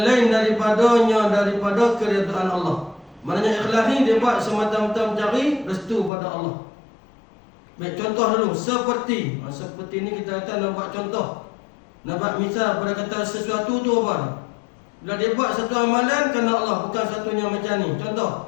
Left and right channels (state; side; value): drops out; right; at 6.1 s